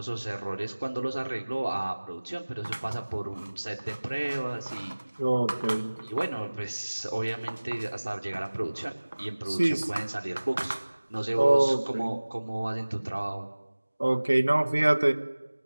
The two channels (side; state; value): both; inverted; correlation -1.00